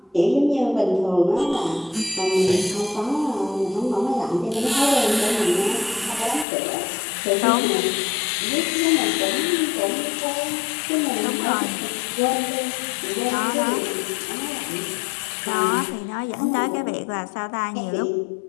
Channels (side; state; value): right; drops out; at 6.5 s